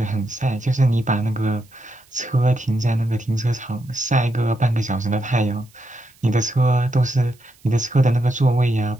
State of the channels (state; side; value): noise; right; hiss, 30 dB below the sound